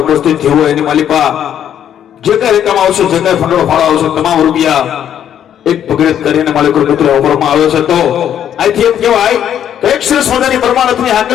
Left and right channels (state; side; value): quieter; right; 9.9 dB